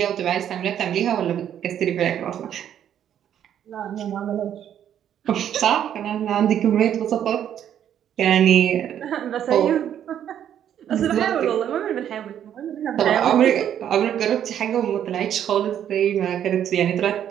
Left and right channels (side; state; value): left; quieter; 9.9 dB